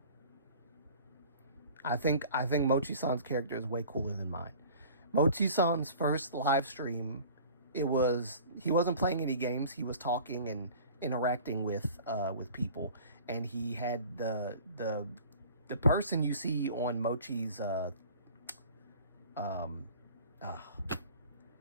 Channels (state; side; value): inverted; both; correlation -0.45